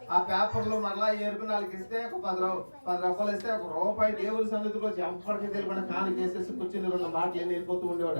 ఆ పేపర్లో మరలా ఏరుకుని వాళ్ళకి ఇస్తే ఒక 10 రూపాయలు ఇస్తే ₹1 దేవుని సన్నిధికి వచ్చి ఎప్పటికీ తెలియకుండా కాని చేసేసి కూర్చుని 2 మాటలు వెళ్ళిపోతూ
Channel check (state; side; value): inverted; both; correlation -1.00